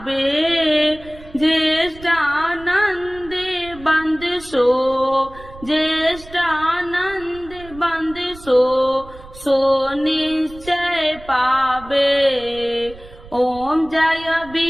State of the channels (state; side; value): noise; right; rumble, 19 dB below the sound